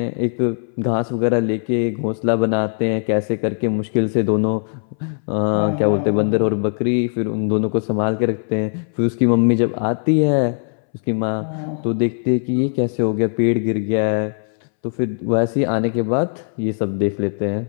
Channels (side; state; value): right; silent; 64 dB below the other